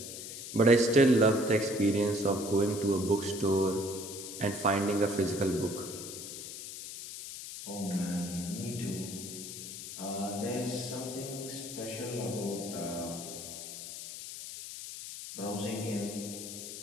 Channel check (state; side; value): noise; left; hiss, 9 dB below the sound